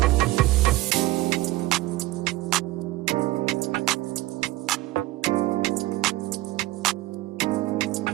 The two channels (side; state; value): left; quieter; 17.7 dB